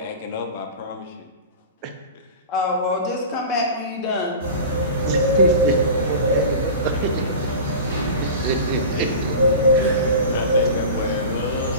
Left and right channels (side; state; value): both; inverted; correlation -0.33